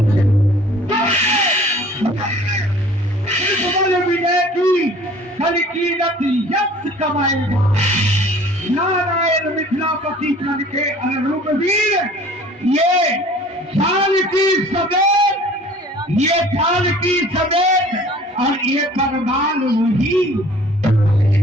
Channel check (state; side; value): normal; both; correlation 0.50